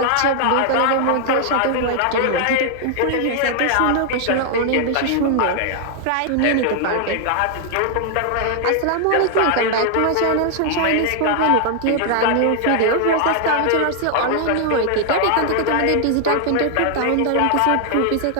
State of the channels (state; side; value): different; both; correlation 0.00